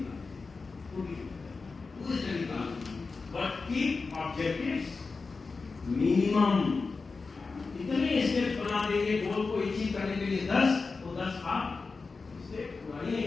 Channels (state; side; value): quieter; right; 4.3 dB